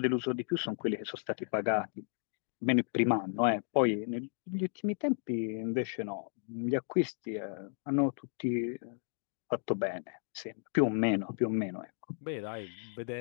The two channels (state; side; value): silent; right; 55 dB below the other